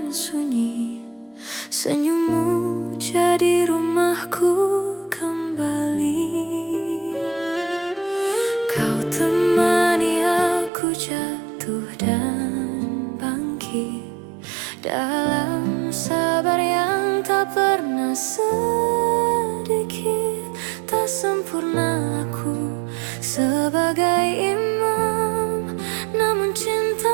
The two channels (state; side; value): drops out; left; at 10.7 s